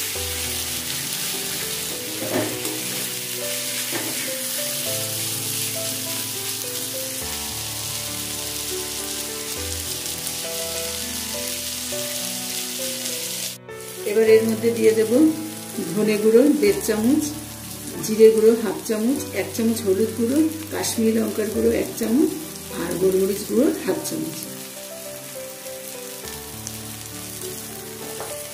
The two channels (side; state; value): both; identical; correlation 1.00